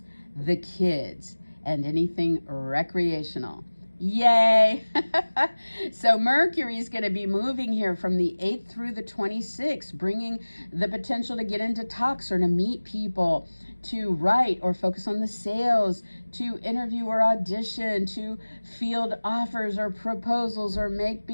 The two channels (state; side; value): inverted; both; correlation -1.00